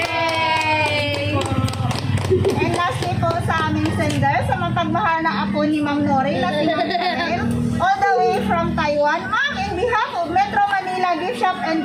And lastly po sa aming sender, sa mapagmahal na apo ni Ma'am Nori na si Ma'am Chanel, all the way from Taiwan. Ma'am, in behalf of Metro Manila Gift Shop and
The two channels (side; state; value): both; identical; correlation 1.00